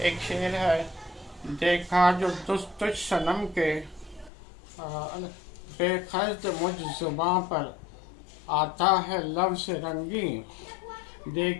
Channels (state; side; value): drops out; right; at 4.3 s